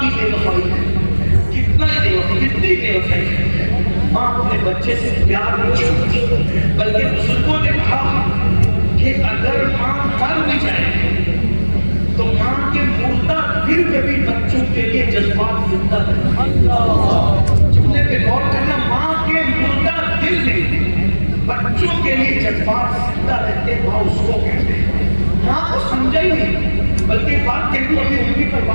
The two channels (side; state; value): both; inverted; correlation -1.00